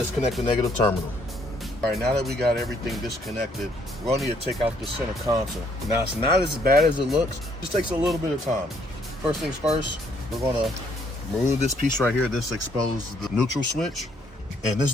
the negative terminal. All right, now that we got everything disconnected, we're going to need to take out the center console. Now it's not as bad as it looks, it just takes a little bit of time. First things first, we're going to remove this piece right here. This exposes the neutral switch. And this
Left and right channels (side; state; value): both; normal; correlation 0.68